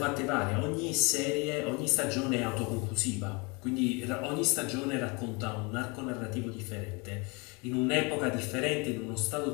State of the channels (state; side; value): quieter; right; 29.2 dB